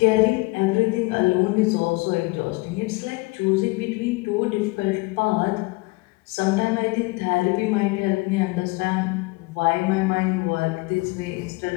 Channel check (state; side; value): quieter; right; 24.7 dB